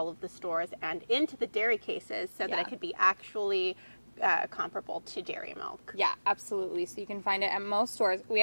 of the stores and into the dairy cases so that it could be actually comparable to dairy milk. Yeah, absolutely. So you can find it at most stores. We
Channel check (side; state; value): both; inverted; correlation -1.00